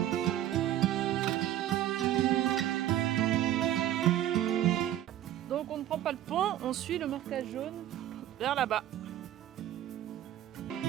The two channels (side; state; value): left; quieter; 12.3 dB